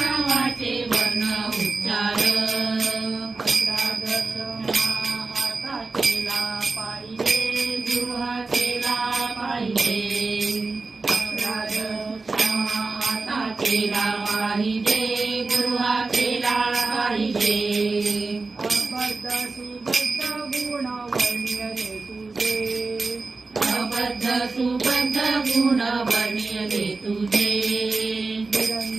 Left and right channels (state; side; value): quieter; left; 3.8 dB